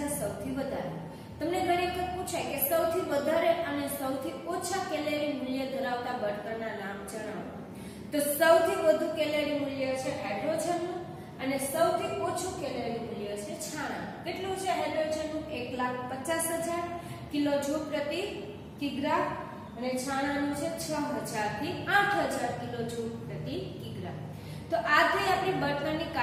સૌથી વધારે. તમને ઘણી વખત પૂછાય કે સૌથી વધારે અને સૌથી ઓછા કેલેરી મૂલ્ય ધરાવતા બળતણના નામ જણાવો. તો સૌથી વધુ કેલેરી મૂલ્ય છે હાઇડ્રોજનનું અને સૌથી ઓછું કેલેરી મૂલ્ય છે છાણાનું. કેટલું છે હાઇડ્રોજનનું? 1,50,000 કિલોજૂલ પ્રતિ કિગ્રા અને છાણાનું છે 6000 થી 8000 કિલોજૂલ પ્રતિ કિગ્રા. તો આ થઈ આપણી બળતણની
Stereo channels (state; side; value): identical; both; correlation 1.00